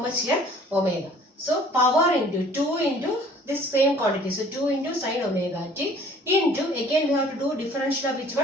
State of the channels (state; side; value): normal; both; correlation 0.53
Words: much here? Omega. So power into 2 into this same quantity. So 2 into sine omega t into, again we have to do differential of which